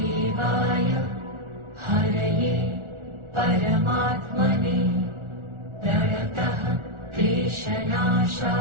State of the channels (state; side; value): late; left; 1.4 ms